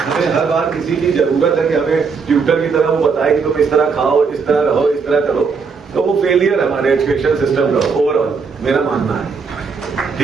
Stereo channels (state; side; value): quieter; left; 5.2 dB